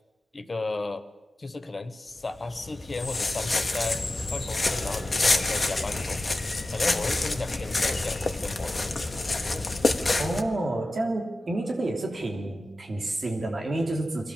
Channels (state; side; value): normal; both; correlation 0.94